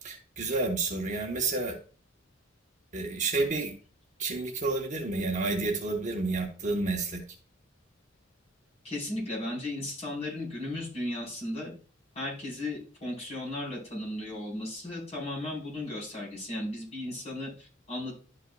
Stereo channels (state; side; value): normal; both; correlation 0.47